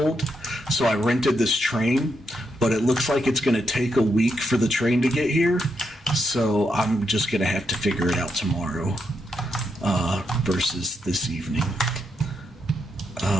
so I rented this train, but it looks like it's going to take a week for the train to get here. So I'm just going to have to figure it out tomorrow versus this evening.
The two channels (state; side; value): normal; both; correlation 0.81